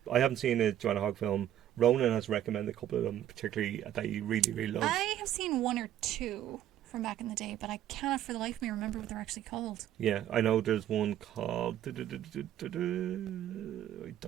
I haven't seen a Joanna Hogg film. Ronan has recommended a couple of them, particularly that he really, really loves. I have seen one or two from back in the day, but I cannot for the life of me remember what they're actually called. Yeah, I know there's one called... I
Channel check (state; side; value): quieter; left; 11.7 dB